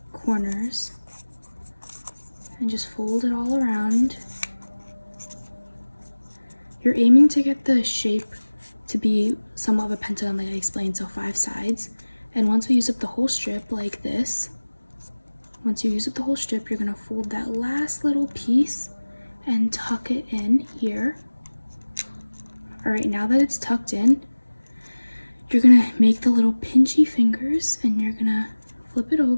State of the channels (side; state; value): both; inverted; correlation -1.00